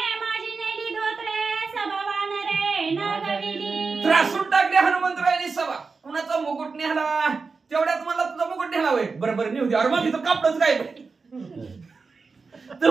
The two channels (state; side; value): quieter; left; 4.6 dB